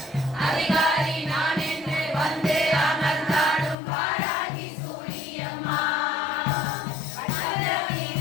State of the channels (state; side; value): drops out; right; at 3.8 s